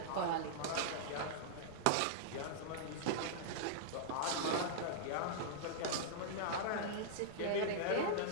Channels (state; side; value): different; both; correlation -0.02